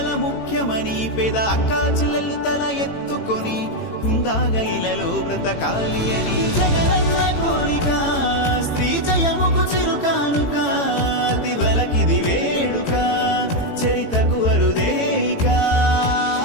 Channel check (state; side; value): late; right; 18 ms